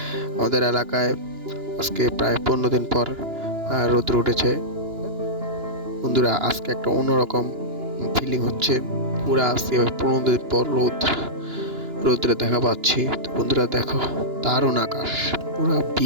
আমাদের এলাকায় আজকে প্রায় 15 দিন পর রোদ উঠেছে। বন্ধুরা, আজকে একটা অন্যরকম ফিলিং হচ্ছে। পুরা আজকে 15 দিন পর রোদ্রে দেখা পাচ্ছি। তো বন্ধুরা দেখো, দারুণ আকাশ, পুরা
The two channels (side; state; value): left; late; 2.9 ms